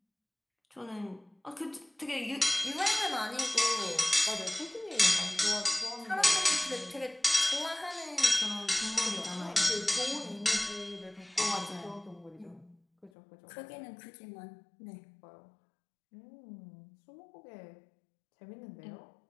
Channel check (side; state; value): right; drops out; at 13.1 s